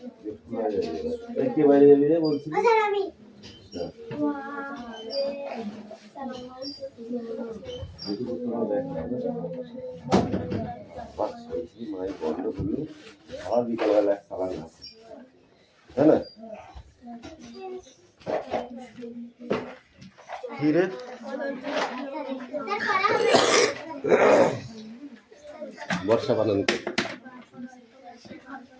কে বাইরে যাবি রে বলছিস? আমি মায়ের বন্ধ হলো আবার বিকালবেলা এক সালান আছে তাই না? কি রে বর্ষা বানান কর।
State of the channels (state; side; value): identical; both; correlation 1.00